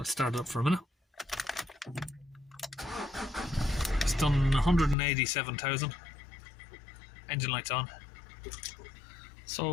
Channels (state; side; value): drops out; right; at 5.0 s